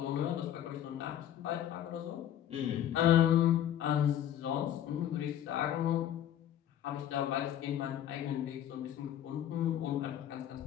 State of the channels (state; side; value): quieter; right; 10.9 dB